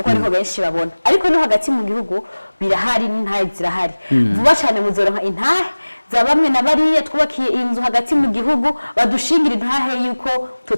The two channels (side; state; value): both; inverted; correlation -1.00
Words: ariho benshi babona, ariko no hagati mu gihugu birahari n'intahe zirahari. Vuba cyane muzoronka intahe za bamwe na bariya twubakiye inzu hagati mu gihugu badushingira intahe yuko